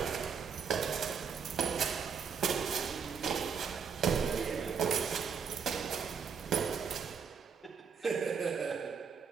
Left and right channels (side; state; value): left; quieter; 6.4 dB